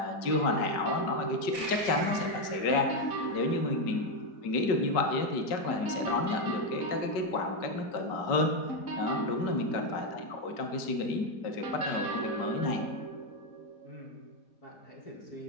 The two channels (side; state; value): right; late; 5.3 ms